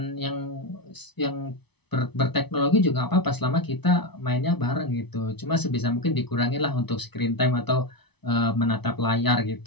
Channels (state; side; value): late; right; 0.99 ms